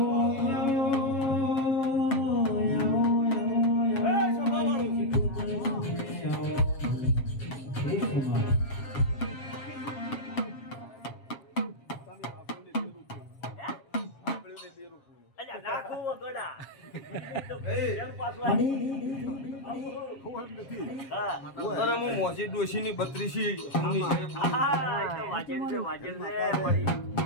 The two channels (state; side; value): late; right; 7.3 ms